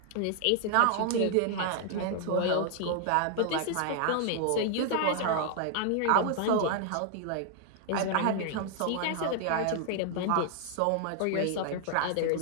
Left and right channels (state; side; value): different; both; correlation 0.00